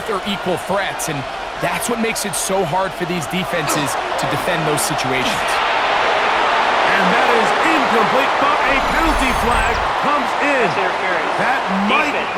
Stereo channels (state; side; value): identical; both; correlation 1.00